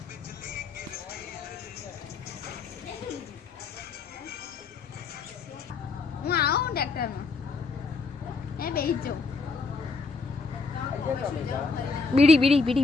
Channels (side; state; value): right; quieter; 4.2 dB